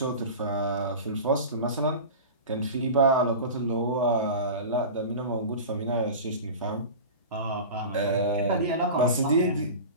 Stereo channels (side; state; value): both; inverted; correlation -0.32